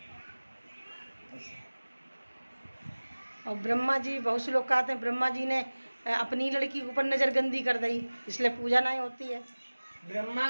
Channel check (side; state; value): both; inverted; correlation -1.00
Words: और ब्रह्मा जी बहुत से लोग कहते हैं ब्रह्मा जी ने अपनी लड़की के ऊपर नजर गंदी कर दी, इसलिए पूजा नहीं होती है। ब्रह्मा